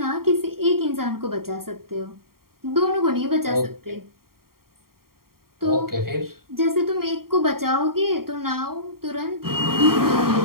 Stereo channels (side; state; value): left; late; 0.93 ms